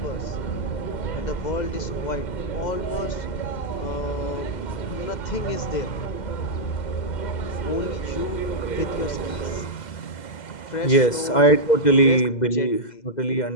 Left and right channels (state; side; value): late; right; 2.0 ms